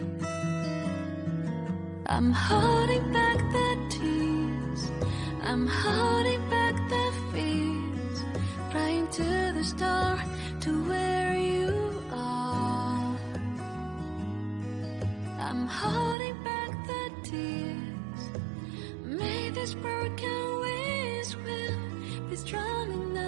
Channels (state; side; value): drops out; left; at 16.2 s